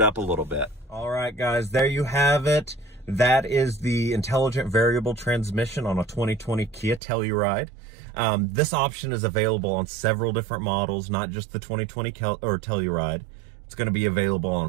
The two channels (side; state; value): left; drops out; at 7.0 s